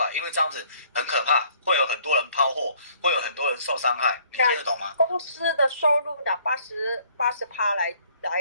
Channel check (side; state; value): both; inverted; correlation -0.60